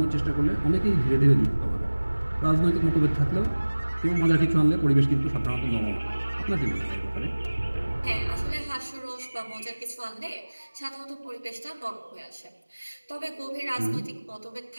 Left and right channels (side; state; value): both; inverted; correlation -1.00